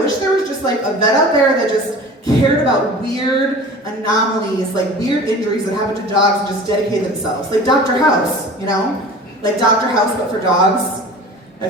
there was just like a vet out there that just cared about weird anomalies, like weird injuries that happen to dogs and just dedicate themselves. Like Dr. House, you know? Like Dr. House, but for dogs. I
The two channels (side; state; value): both; normal; correlation 0.40